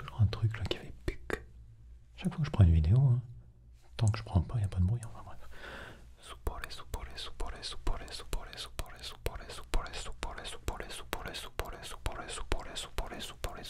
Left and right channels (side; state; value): both; identical; correlation 1.00